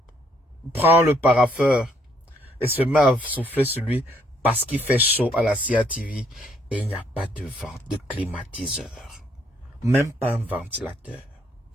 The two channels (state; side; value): normal; both; correlation 0.68